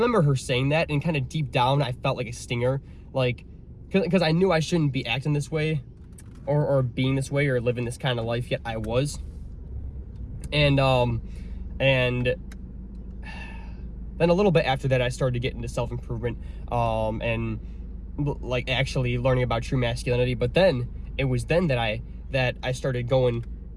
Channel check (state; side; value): identical; both; correlation 1.00